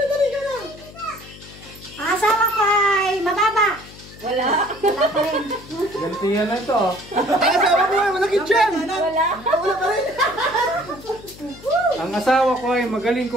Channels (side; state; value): left; noise; hum, 19 dB below the sound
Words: Ang asawa ko ay mababa. Wala. Wala pa rin. Gantihan na ito. Ang asawa ko ay malakit dyan. Wala. Wala pa rin. Ang asawa ko ay magaling